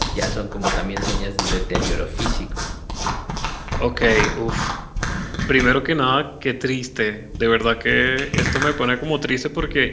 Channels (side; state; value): both; identical; correlation 1.00